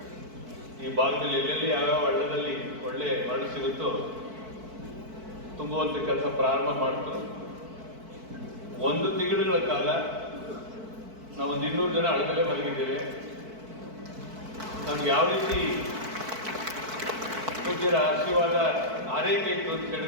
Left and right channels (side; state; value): left; late; 4.5 ms